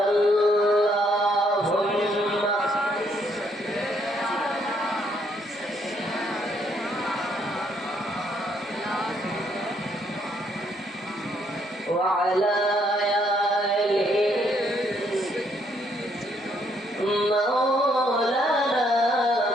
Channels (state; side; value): normal; both; correlation 0.70